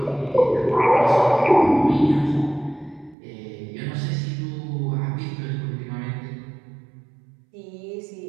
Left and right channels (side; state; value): left; drops out; at 3.2 s